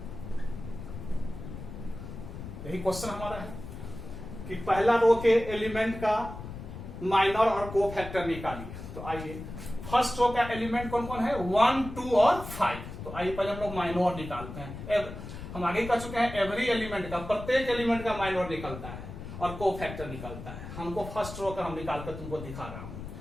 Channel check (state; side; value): noise; left; rumble, 10 dB below the sound